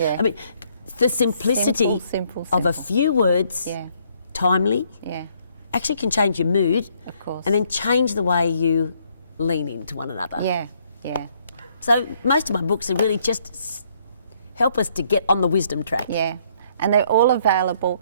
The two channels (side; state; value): both; inverted; correlation -0.68